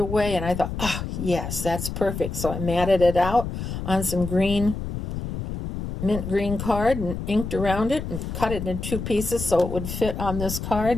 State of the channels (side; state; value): left; noise; rumble, 6 dB below the sound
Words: and I thought, oh, yes, that's perfect. So I matted it out on some mint green card and inked around it and cut it into 2 pieces so it would fit on this card.